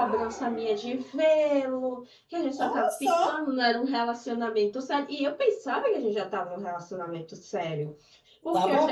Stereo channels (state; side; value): identical; both; correlation 1.00